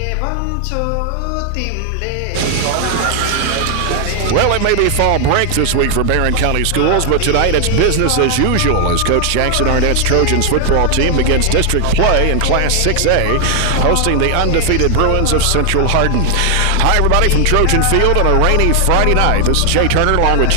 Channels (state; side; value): different; both; correlation 0.00